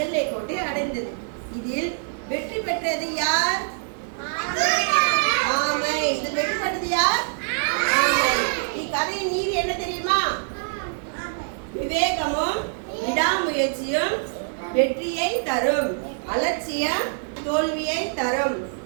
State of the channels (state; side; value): silent; left; digital silence